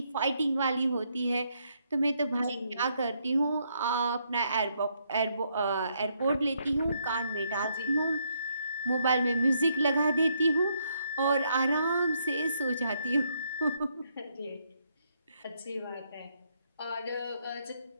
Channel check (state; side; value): inverted; both; correlation -0.74